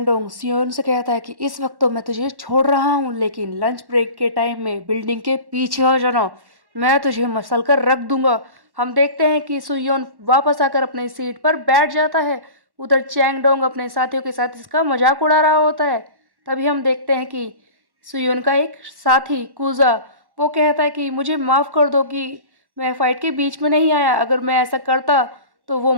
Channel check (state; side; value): late; left; 1.1 ms